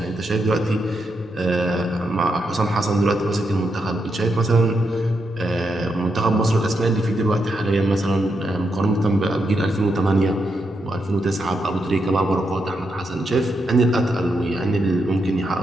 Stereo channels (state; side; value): normal; both; correlation 0.82